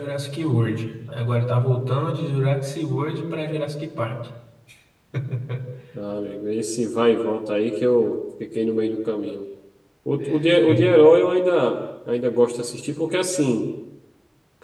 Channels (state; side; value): identical; both; correlation 1.00